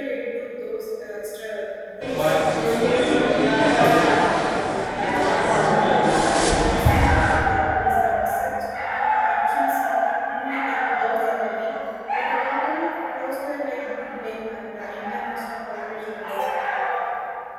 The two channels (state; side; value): identical; both; correlation 1.00